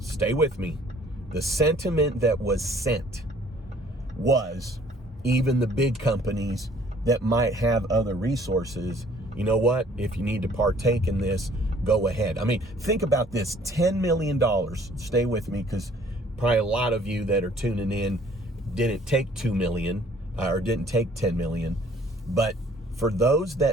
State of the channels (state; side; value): normal; both; correlation 0.57